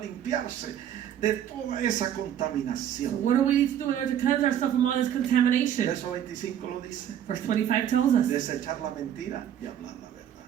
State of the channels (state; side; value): quieter; left; 10.1 dB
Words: limpiarse de toda esa So contaminación? what do we need to do in order to cleanse ourselves from all this contamination? Verso 25 lo dice. Verse 25 tells us, Desechar la mentira y hablar la verdad.